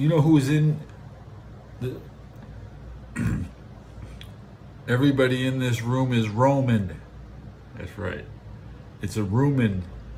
know who's in the? Everybody in this room is Roman. That's right. It's a Roman.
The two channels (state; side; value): identical; both; correlation 1.00